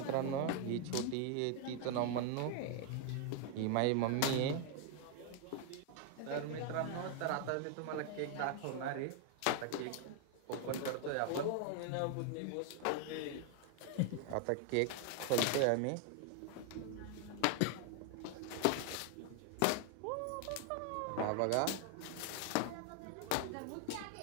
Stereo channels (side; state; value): both; different; correlation 0.00